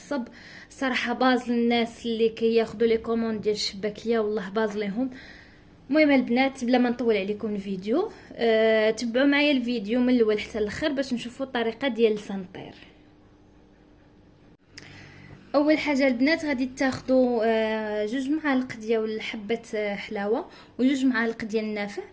صراحه. باز الناس اللي كياخذوا لي كوموند ديال الشباكيه والله باز ليهم. المهم البنات بلا ما نطول عليكم الفيديو، تبعوا معايا الفيديو من الاول حتى الاخر باش نشوفوا الطريقه ديال لسان الطير. اول حاجه البنات غادي تاخذوا 2 معالق ديال حبه حلاوه و2 معالق ديال النافع،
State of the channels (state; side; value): identical; both; correlation 1.00